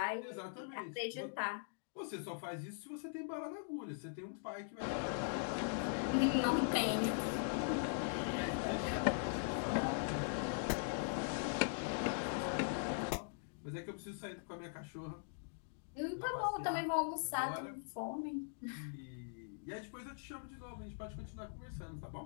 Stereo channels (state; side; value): silent; right; digital silence